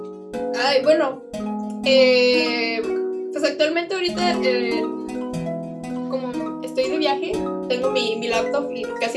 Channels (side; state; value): both; identical; correlation 1.00